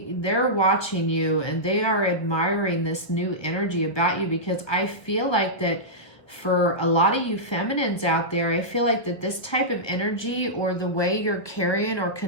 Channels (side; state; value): right; late; 1.2 ms